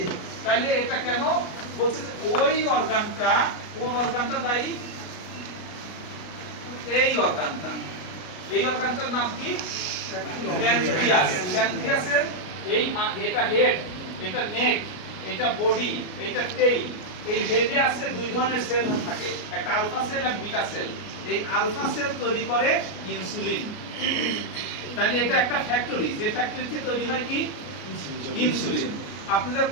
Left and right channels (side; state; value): right; late; 33 ms